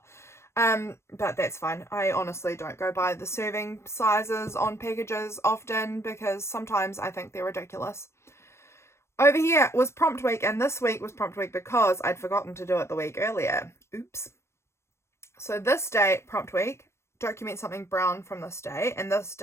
But that's fine. I honestly don't go by the serving sizes on packages often, because sometimes I think they're ridiculous. Over here was prompt week, and this week was prompt week because I'd forgotten to do it the week earlier. Oops. So this day, prompt week, document something brown from this day, and this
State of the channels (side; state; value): right; late; 0.13 ms